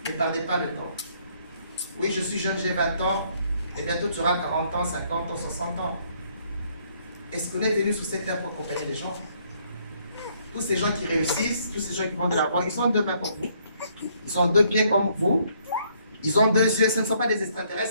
Ne perdez pas le temps. Oui, je suis jeune, j'ai 20 ans. Et bientôt, tu auras 40 ans, 50 ans, 60 ans. Est-ce qu'on est venu sur cette terre pour accompagner les gens? Tous ces gens qui réussissent, tous ces gens qui vont de la voie, ils ont deux mains comme vous. Ils ont deux pieds comme vous. Ils ont deux yeux. Ce ne sont pas des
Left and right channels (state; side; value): inverted; both; correlation -0.68